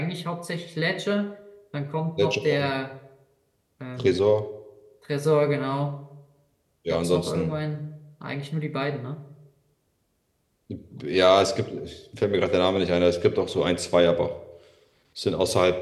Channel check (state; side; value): identical; both; correlation 1.00